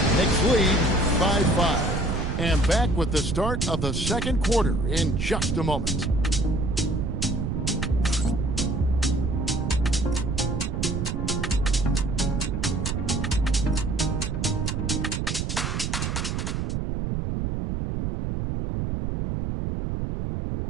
Knicks lead by 5. And back with the start of the second quarter in just a moment.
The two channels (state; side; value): noise; right; rumble, 1 dB below the sound